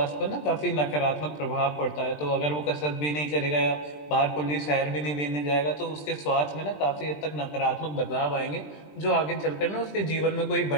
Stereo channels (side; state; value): right; late; 20 ms